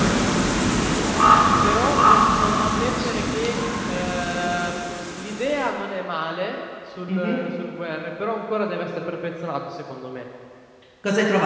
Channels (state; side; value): identical; both; correlation 1.00